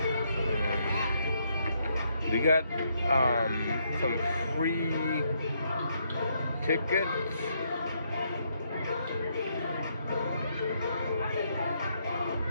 we got some free tickets.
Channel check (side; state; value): both; inverted; correlation -0.74